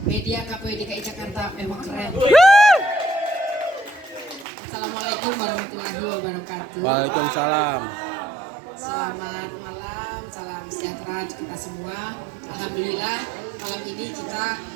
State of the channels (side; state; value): left; drops out; at 4.5 s